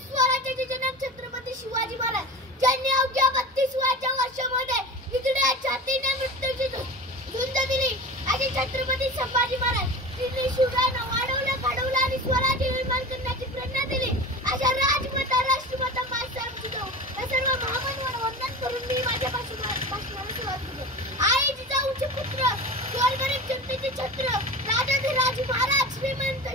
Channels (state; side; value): normal; both; correlation 0.32